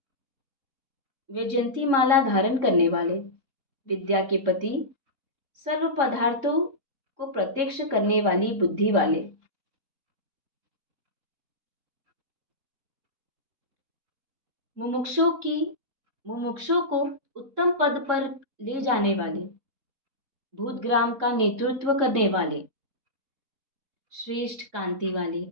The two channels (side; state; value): left; late; 3.6 ms